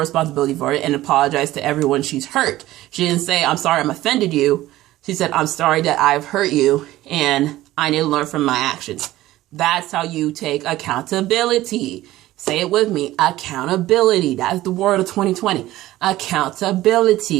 for it and apologized to everyone she's hurt. She didn't say, I'm sorry I'm offended you. She said, I'm sorry that I've hurt you and I need to learn from my actions. That's how you take accountability. Say it with me. Accountability. That's the word of 2020.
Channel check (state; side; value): quieter; left; 15.9 dB